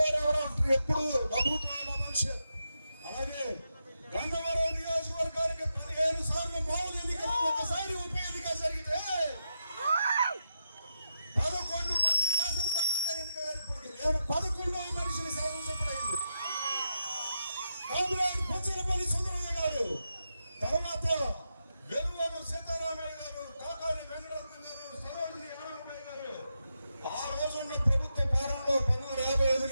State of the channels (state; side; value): inverted; both; correlation -0.85